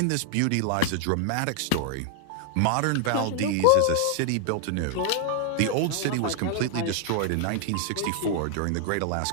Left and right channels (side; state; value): both; different; correlation 0.00